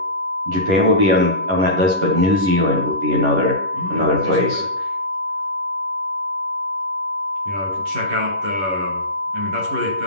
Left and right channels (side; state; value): left; late; 11 ms